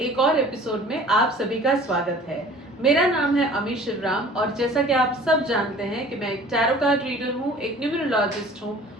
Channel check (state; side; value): normal; both; correlation 0.47